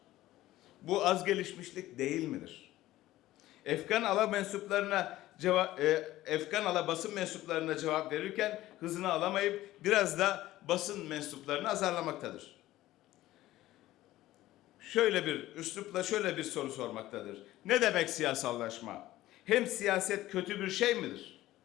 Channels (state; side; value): quieter; right; 15.7 dB